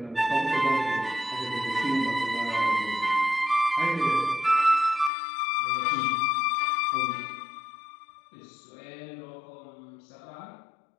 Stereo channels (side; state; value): right; drops out; at 5.1 s